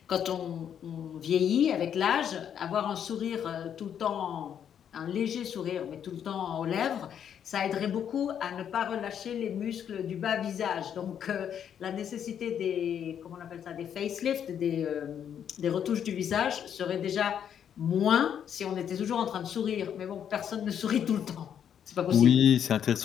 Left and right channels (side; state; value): right; quieter; 8.8 dB